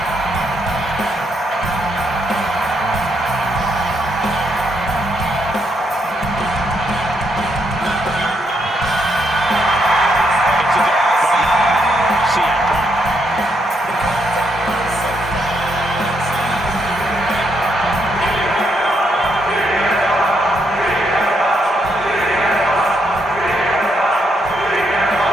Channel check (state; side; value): normal; both; correlation 0.77